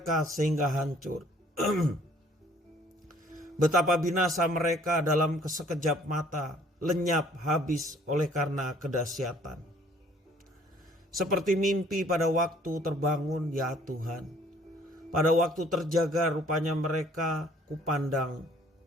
sehingga hancur. Betapa binasa mereka dalam sekejap mata, lenyap habis oleh karena kedahsyatan. Seperti mimpi pada waktu terbangun ya Tuhan. Pada waktu terjaga rupanya mereka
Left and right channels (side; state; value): both; normal; correlation 0.58